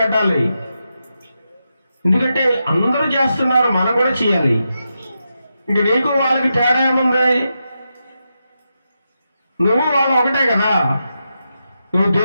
ఎందుకంటే అందరూ చేస్తున్నారు, మనం కూడా చేయాలి. ఇంక నీకు వాళ్ళకి తేడా ఏముంది? నువ్వు వాళ్ళు ఒకటే కదా. నువ్వు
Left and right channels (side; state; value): both; inverted; correlation -0.87